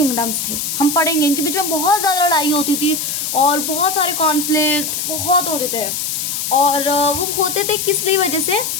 थे। हम पढ़ेंगे इनके बीच में बहुत ज़्यादा लड़ाई होती थी और बहुत सारे कॉन्फ्लिक्ट बहुत होते थे। और वो होते थे किस लिए वजह से,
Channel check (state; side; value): noise; left; hiss, 2 dB below the sound